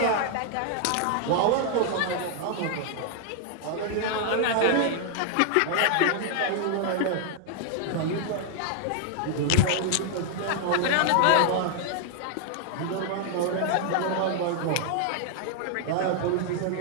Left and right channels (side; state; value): both; different; correlation 0.00